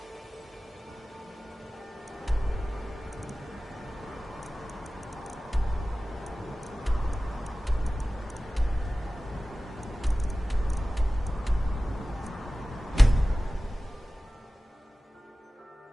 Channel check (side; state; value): both; normal; correlation 0.96